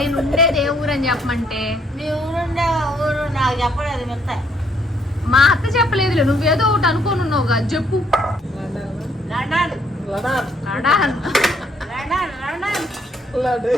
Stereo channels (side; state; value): both; normal; correlation 0.69